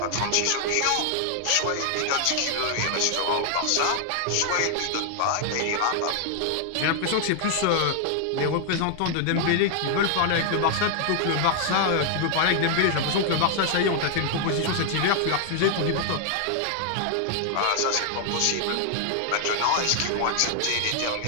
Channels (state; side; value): different; both; correlation 0.00